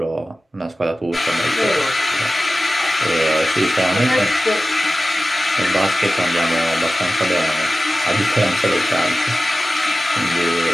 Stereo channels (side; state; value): both; normal; correlation 0.95